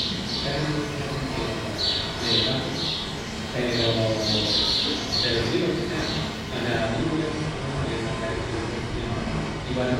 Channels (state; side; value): identical; both; correlation 1.00